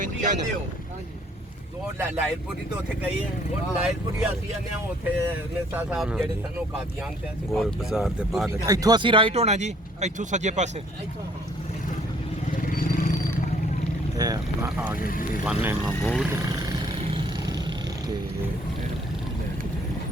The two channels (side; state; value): both; normal; correlation 0.61